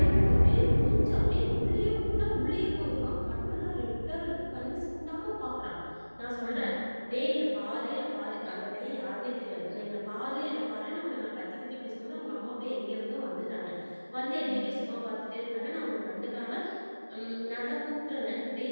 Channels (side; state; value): both; inverted; correlation -1.00